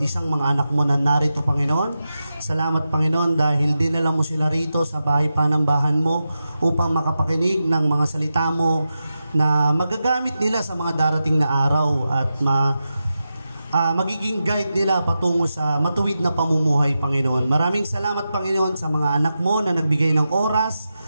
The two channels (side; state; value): both; inverted; correlation -0.91